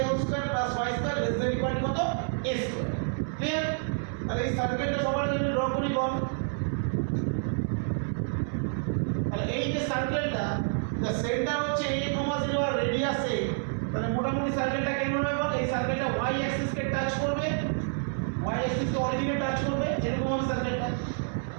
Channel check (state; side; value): silent; left; 59 dB below the other